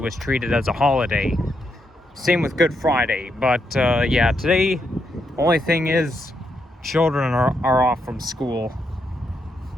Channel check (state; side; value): normal; both; correlation 0.80